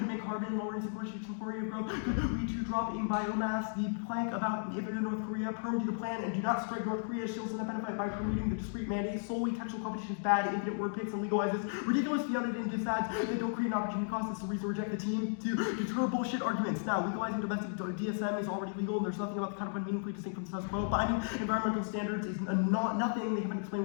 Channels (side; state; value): right; silent; digital silence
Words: make carbon lowering sequestration for of growth could lead to drop in biomass. The plank about if in North Korea perm to the plan and do not strike North Korea shields and benefit by permitting the discrete mandates. Solely textual competition is bad. Infinite word picks and legalizes ridiculous beyond it into ads that don't create an opportunity cost. It's the reason to reject the team to deter bullshit arguments. Now, legalizing domestic DSM is already legal and there's nothing about the counterplan meaningfully distinct from the status quo. Binding environmental standards is nothing. They haven't explained